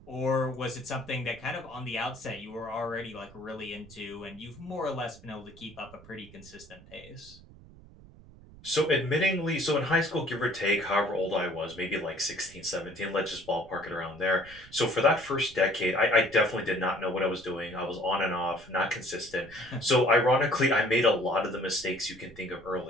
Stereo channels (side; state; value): right; noise; rumble, 21 dB below the sound